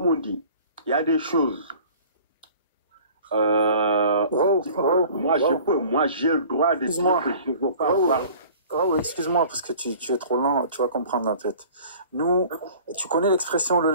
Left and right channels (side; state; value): both; inverted; correlation -0.47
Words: on dit, il y a des choses. Moi, j'ai le droit de dire que je ne veux pas voir. Oh, excuse-moi, parce que tu es trop lent, tu vas comprendre en fait. Nous, tu connais l'expression le